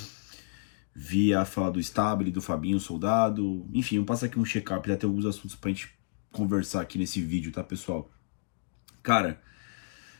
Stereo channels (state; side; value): silent; right; digital silence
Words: vi a fala do Stabile, do Fabinho Soldado, enfim, eu passo aqui um check-up, já tem alguns assuntos pra gente conversar aqui nesse vídeo, tá, pessoal? Cara,